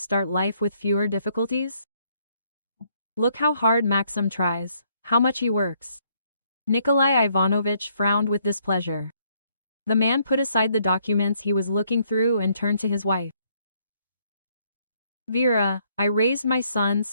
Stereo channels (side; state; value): both; inverted; correlation -0.69